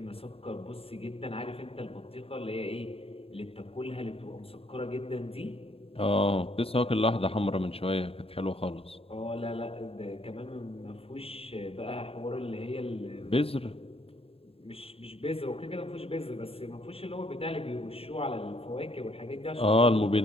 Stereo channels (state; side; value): late; right; 0.28 ms